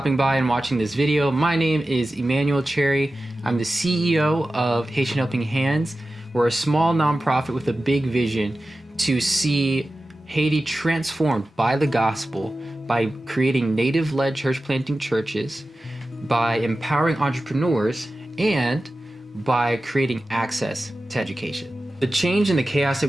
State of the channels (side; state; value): both; normal; correlation 0.94